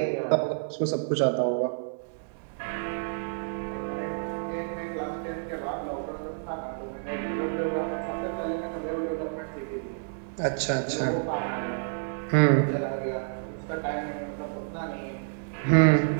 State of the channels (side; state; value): left; silent; 59 dB below the other